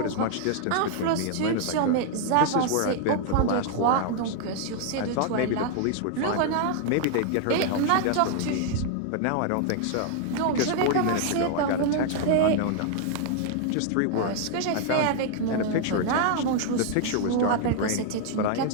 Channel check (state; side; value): different; both; correlation 0.00